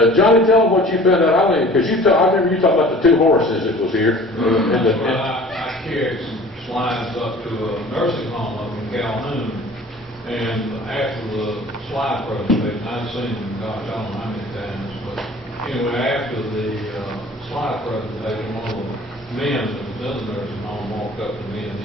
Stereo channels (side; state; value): both; normal; correlation 0.46